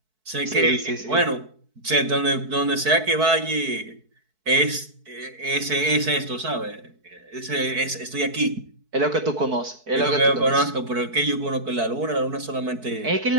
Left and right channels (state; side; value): late; left; 4.6 ms